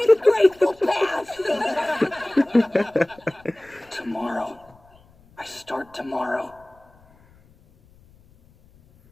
disgraceful past! Tomorrow. I start tomorrow.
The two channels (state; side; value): noise; left; rumble, 29 dB below the sound